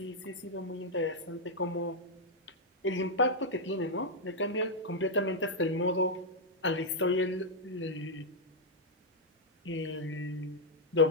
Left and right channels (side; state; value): both; normal; correlation -0.03